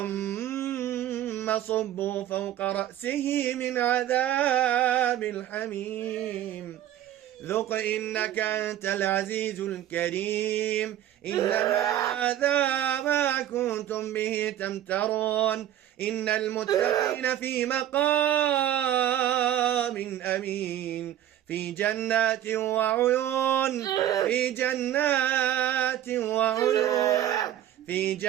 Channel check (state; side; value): quieter; left; 11.9 dB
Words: صبوا فوق رأسه من عذاب الحميم. ذق إنك أنت العزيز الكريم. إن هذا ما كنتم به تمترون. إن المتقين في مقام أمين، في جنات وعيون، في جنات وعيون، في